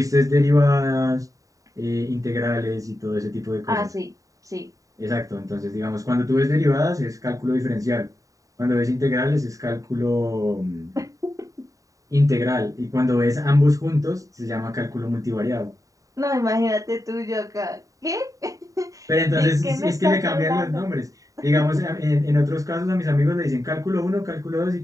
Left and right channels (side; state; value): left; late; 0.16 ms